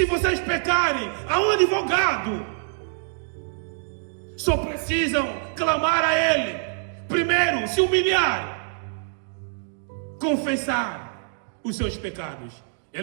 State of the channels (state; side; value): silent; left; digital silence